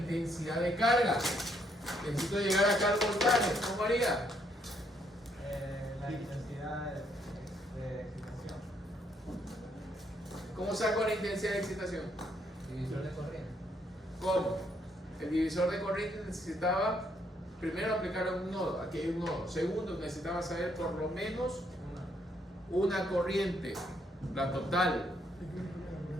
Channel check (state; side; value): normal; both; correlation 0.72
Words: de carga. Necesito llegar acá al voltaje, ¿cómo haría? La intensidad de excitación. ¿Cómo saco la intensidad de excitación? Divisor de corriente. ¿Cómo? El divisor de corriente necesitaba primero aplicar un nodo, aquí hay un nodo. Segundo, necesitaba saber por lo menos una corriente, la total,